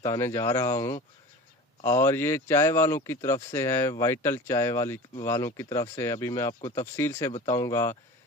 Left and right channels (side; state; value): both; normal; correlation 0.35